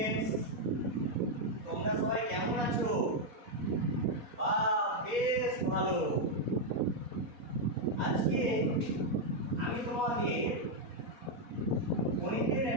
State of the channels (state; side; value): late; left; 4.1 ms